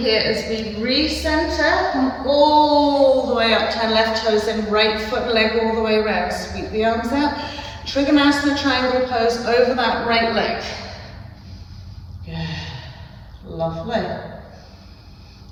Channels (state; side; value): identical; both; correlation 1.00